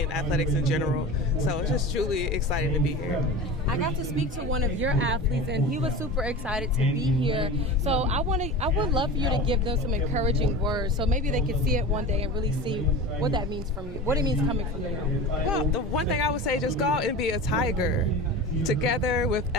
and athletics in general. So it's just truly exciting to be here. I got to speak to one of your athletes, and he was super excited to be here. So I would love for you to give them some encouraging words, so maybe they could see it one day and really see what that means from you, what it means coming from you. Well, the one thing I would say, just go out and be a tiger, together with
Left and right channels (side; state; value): both; normal; correlation 0.31